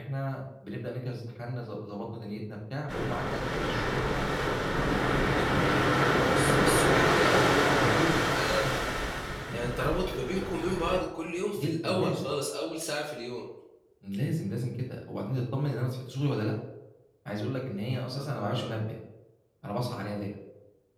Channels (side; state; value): both; identical; correlation 1.00